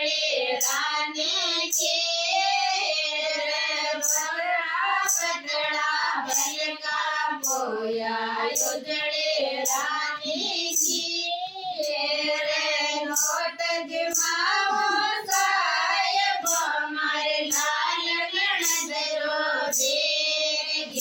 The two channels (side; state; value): both; identical; correlation 1.00